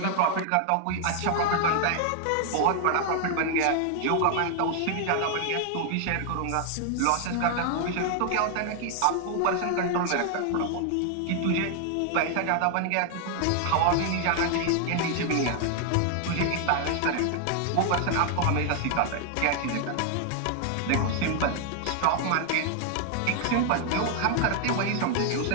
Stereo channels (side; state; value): both; different; correlation 0.00